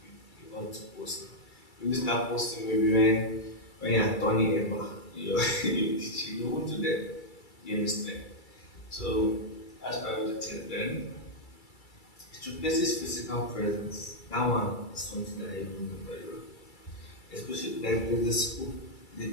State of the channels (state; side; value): late; right; 2.3 ms